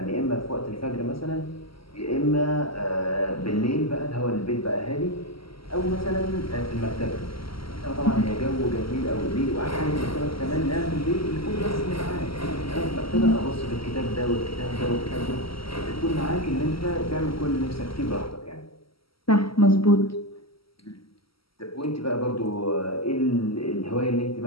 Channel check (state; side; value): late; right; 0.75 ms